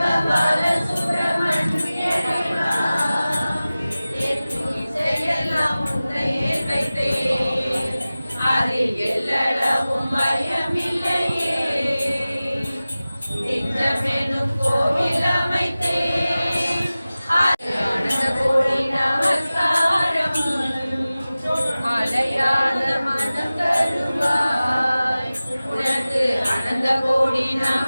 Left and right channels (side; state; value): both; inverted; correlation -0.97